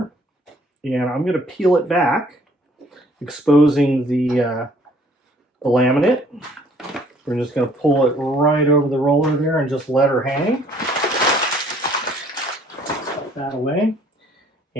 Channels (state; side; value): normal; both; correlation 0.59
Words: and I'm going to peel it back, exposing the laminate. We're just going to pull it right over the roller there and just let her hang. Put that away.